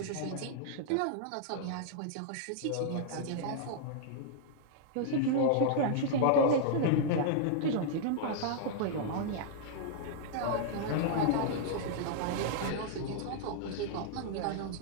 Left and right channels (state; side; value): different; both; correlation -0.01